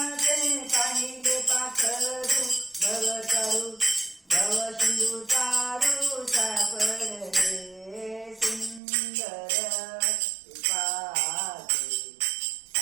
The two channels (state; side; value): drops out; left; at 8.8 s